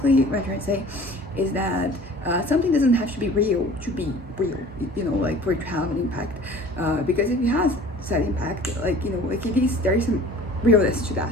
what I'm trying to say is that something doesn't have to be real to be real, like for it to have an impact, because if it has that impact, like like it is, there is some realness to that.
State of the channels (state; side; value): normal; both; correlation 0.46